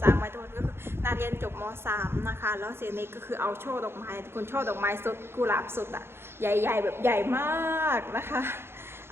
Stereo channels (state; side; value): late; left; 0.12 ms